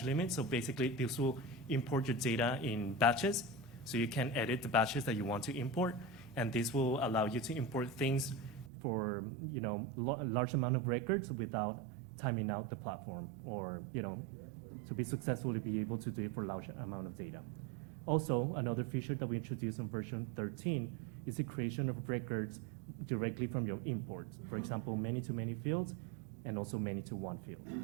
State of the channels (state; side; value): drops out; left; at 8.7 s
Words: limit? So basically, this will import your data in batches, so you can edit the batches that you want to import, and this will allow you to import things for a large amount of records without timing out the platform, or to be successfully be able to do it for a large amount of data. Also, another feature that we introduced in version 13 is the creation of records directly from your imports. For example, many-to-many fields, and also many-to-one field.